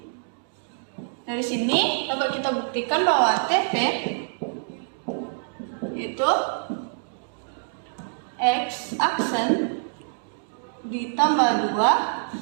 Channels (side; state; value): left; silent; digital silence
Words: Dari sini dapat kita buktikan bahwa TP itu X aksen ditambah